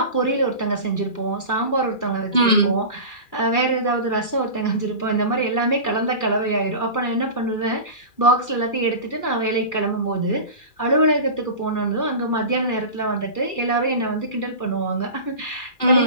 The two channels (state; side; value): late; right; 2.4 ms